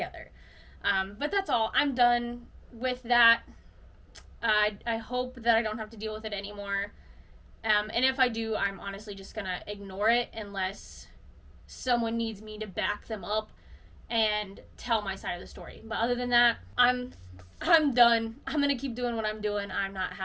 But that's all. I'm done with that. I hope that I don't have to deal with it anymore. And if I do, I'm honestly just gonna ignore it unless someone needs me to back them up and tell my side of the story. But other than that, I'm done. I'm gonna keep doing what I'm doing. I'm not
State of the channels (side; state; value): both; identical; correlation 1.00